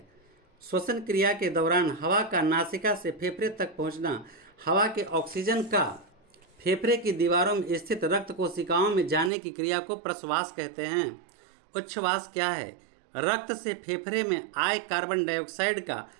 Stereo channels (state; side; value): drops out; left; at 9.3 s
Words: श्वसन क्रिया के दौरान हवा का नासिका से फेफड़े तक पहुंचना, हवा के ऑक्सीजन का फेफड़े की दीवारों में स्थित रक्त कोशिकाओं में जाने की क्रिया को प्रश्वास कहते हैं। उच्छ्वास क्या है? रक्त से फेफड़े में आए कार्बन डाइऑक्साइड का